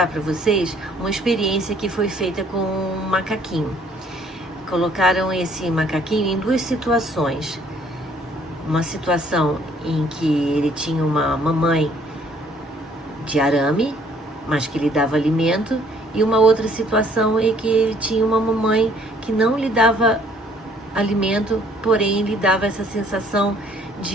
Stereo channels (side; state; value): both; normal; correlation 0.61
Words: para vocês uma experiência que foi feita com um macaquinho. Colocaram esse macaquinho em duas situações. Uma situação em que ele tinha uma mamãe de arame, mas que lhe dava alimento, e uma outra situação em que ele tinha uma mamãe que não lhe dava alimento, porém lhe dava essa sensação